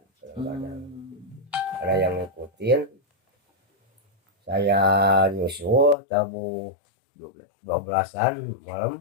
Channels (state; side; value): drops out; right; at 6.0 s